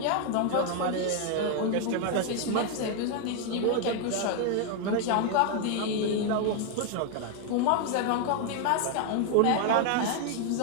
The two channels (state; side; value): different; both; correlation 0.01